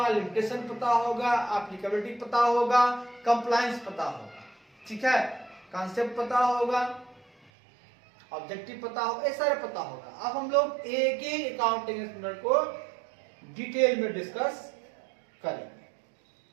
लिमिटेशन पता होगा, एप्लीकेबिलिटी पता होगा, कंप्लायंस पता होगा। ठीक है, कंसेप्ट पता होगा, ऑब्जेक्टिव पता होगा, ये सारे पता होगा। अब हम लोग एक एक अकाउंटिंग स्टैंडर्ड को डिटेल में डिस्कस करेंगे।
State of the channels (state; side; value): drops out; left; at 7.5 s